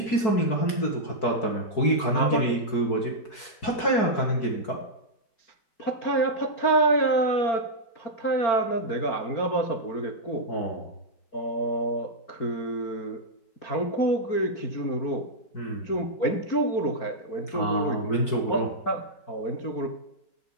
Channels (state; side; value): late; right; 4.6 ms